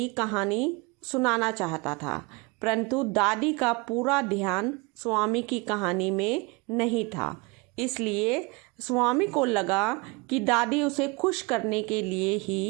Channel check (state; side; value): quieter; left; 27.1 dB